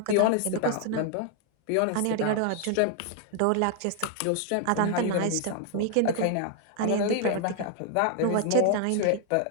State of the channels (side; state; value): both; different; correlation 0.00